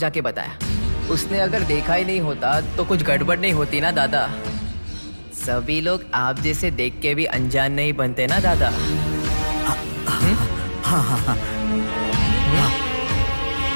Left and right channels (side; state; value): both; inverted; correlation -1.00